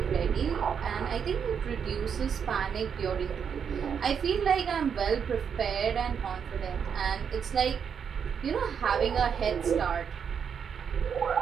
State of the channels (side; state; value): left; quieter; 7.2 dB